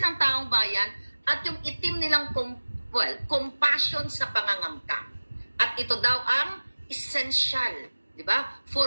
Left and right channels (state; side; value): inverted; both; correlation -1.00